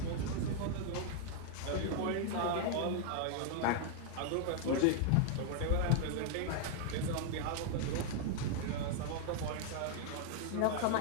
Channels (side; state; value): both; different; correlation 0.00